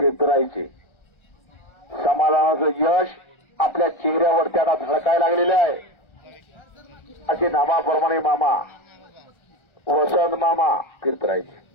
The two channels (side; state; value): right; late; 1.4 ms